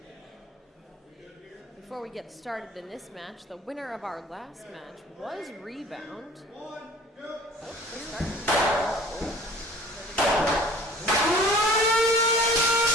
Before we get started in this match, the winner of our last match was Rebound.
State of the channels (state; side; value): normal; both; correlation 0.47